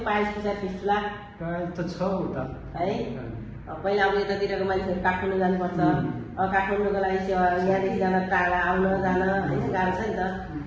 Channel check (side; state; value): both; identical; correlation 1.00